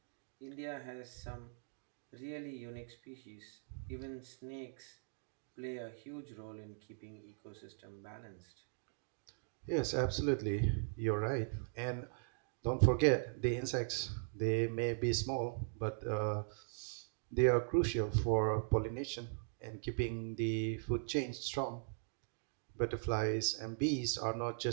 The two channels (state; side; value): silent; left; digital silence